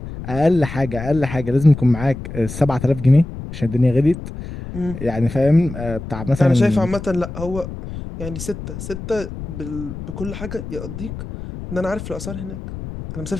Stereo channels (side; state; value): left; noise; rumble, 10 dB below the sound